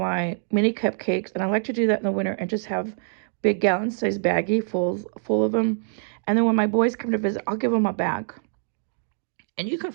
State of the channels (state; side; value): silent; left; digital silence